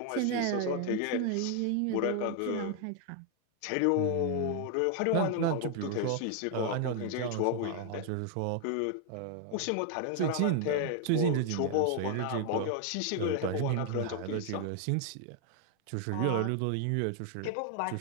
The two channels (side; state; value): both; different; correlation 0.00